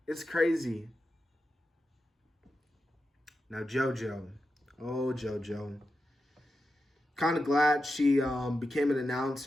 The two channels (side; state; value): both; normal; correlation 0.89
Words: it's crazy. Now JoJo. Oh, JoJo. Kind of glad she became an